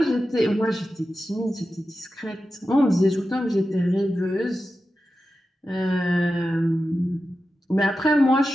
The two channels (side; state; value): both; normal; correlation 0.92